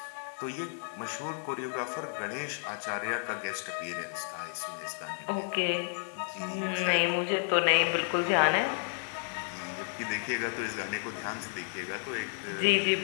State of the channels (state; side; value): silent; right; 56 dB below the other